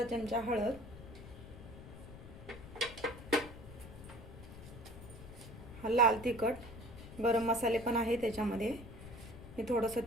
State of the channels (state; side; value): noise; left; rumble, 14 dB below the sound